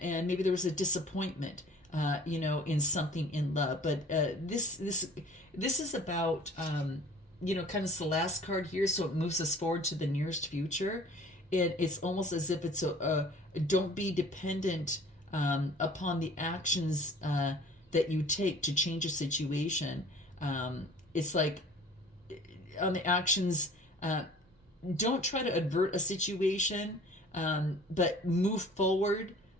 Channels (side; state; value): both; normal; correlation 0.49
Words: maybe there was a disappointment, in something in love. But this is about kind of the last card here, so it moves us forward to the nearest future. And it's almost as if it's don't be dependent upon the actions that you take to change a situation. It's like on the actions, don't try to avert a situation, but move forward